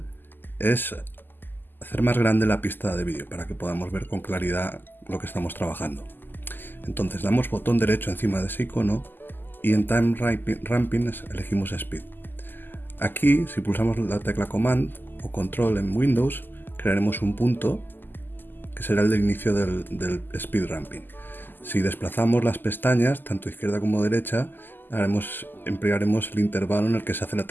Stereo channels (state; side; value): late; right; 0.091 ms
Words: es hacer más grande la pista de vídeo para que podamos ver con claridad lo que estamos trabajando. Entonces damos botón derecho encima de ese icono y en Time Ramping elegimos Speed. Aquí, si pulsamos la tecla Command o Control en Windows, crearemos un punto que será el de inicio del Speed Ramping. Si desplazamos las pestañas, tanto izquierda como derecha, emplearemos el intervalo en el que se hace la